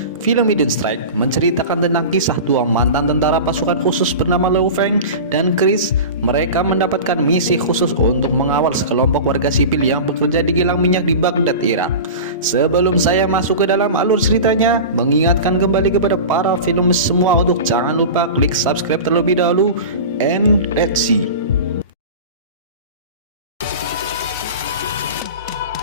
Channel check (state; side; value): inverted; both; correlation -0.31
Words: Film Hidden Strike menceritakan tentang kisah dua mantan tentara pasukan khusus bernama Liu Feng dan Chris. Mereka mendapatkan misi khusus untuk mengawal sekelompok warga sipil yang bekerja di kilang minyak di Baghdad, Irak. Sebelum saya masuk ke dalam alur ceritanya, mengingatkan kembali kepada para film semua untuk jangan lupa klik subscribe terlebih dahulu, and let's see.